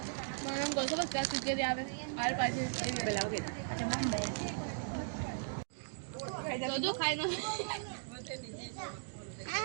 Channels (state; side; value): silent; left; digital silence